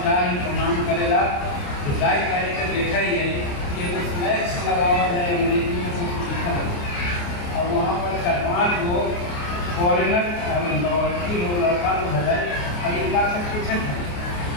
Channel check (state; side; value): late; right; 29 ms